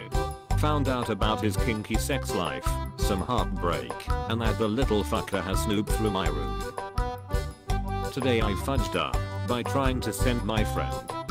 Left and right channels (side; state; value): both; identical; correlation 1.00